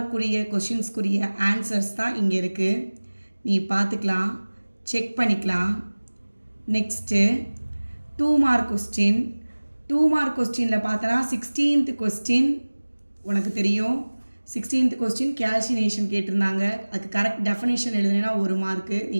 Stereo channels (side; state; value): both; inverted; correlation -1.00